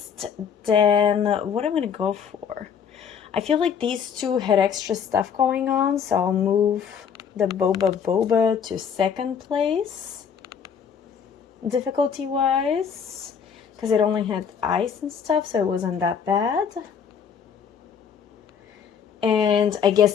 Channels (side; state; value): right; quieter; 7.3 dB